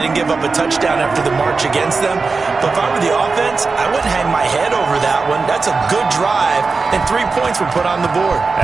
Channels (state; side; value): quieter; left; 4.3 dB